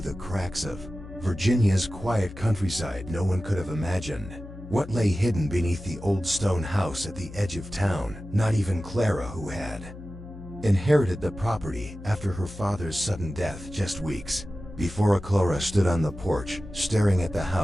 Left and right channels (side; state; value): left; noise; hum, 14 dB below the sound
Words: cracks of Virginia's quiet countryside. No one could have imagined what lay hidden beneath the old stone house at the edge of town, not even Clara, who had inherited the property after her father's sudden death just weeks before. Clara stood on the porch, staring at the